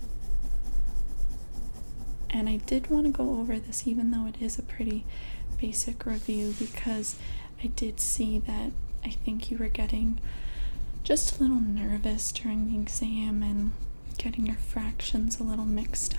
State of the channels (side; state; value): both; inverted; correlation -1.00